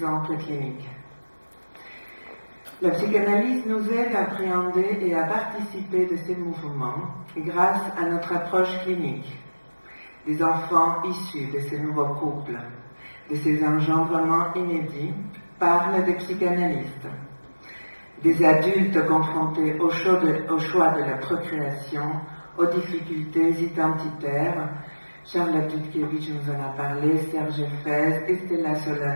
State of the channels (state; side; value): inverted; both; correlation -1.00